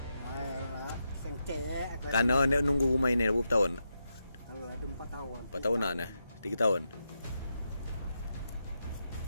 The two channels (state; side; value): inverted; both; correlation -0.85